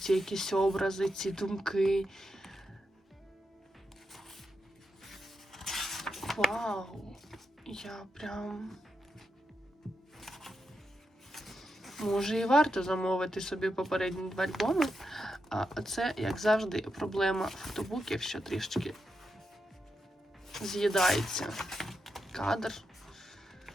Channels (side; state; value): both; normal; correlation 0.86